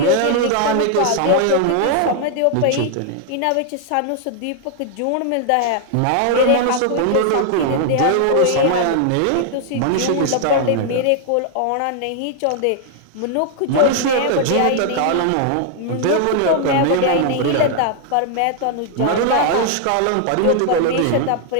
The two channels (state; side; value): different; both; correlation 0.00